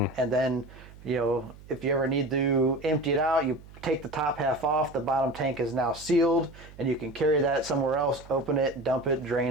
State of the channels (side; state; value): right; noise; hum, 20 dB below the sound